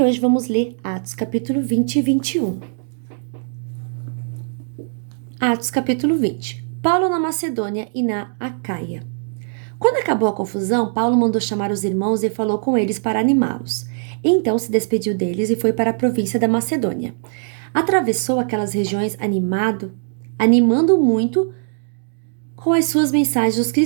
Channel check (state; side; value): silent; left; digital silence